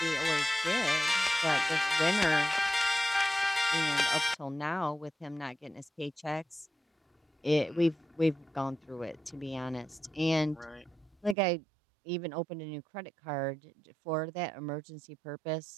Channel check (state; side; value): drops out; left; at 11.4 s